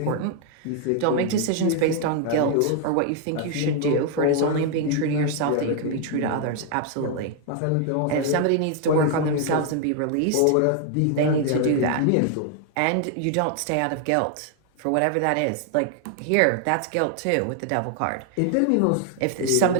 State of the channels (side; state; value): both; different; correlation 0.00